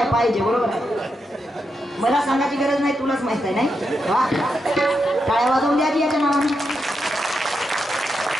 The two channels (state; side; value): normal; both; correlation 0.85